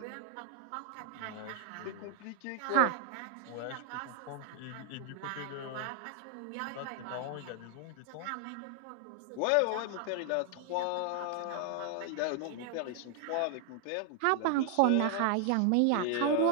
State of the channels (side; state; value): both; different; correlation 0.00